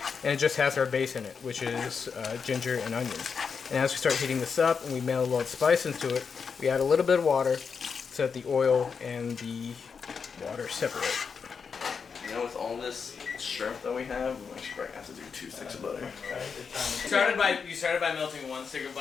and it just has our base in it, which is ginger and onions. And as we start heating this up, and we melt a little spice into it, we add a little bit of water so that the oil and the water separate. You know, with all this shrimp that we have, we actually probably have to do 2 sticks of butter. You started by melting 1 stick of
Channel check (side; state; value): right; quieter; 5.9 dB